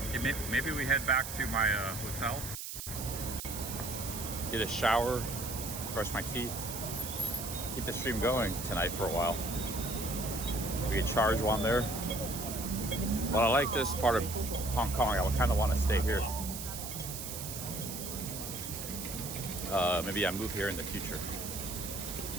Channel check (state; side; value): noise; right; hiss, 7 dB below the sound